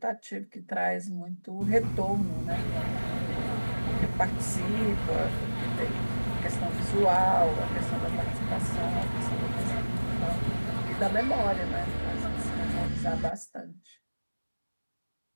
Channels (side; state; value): both; inverted; correlation -1.00